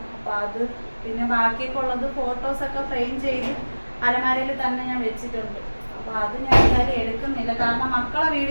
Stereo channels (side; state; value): both; inverted; correlation -1.00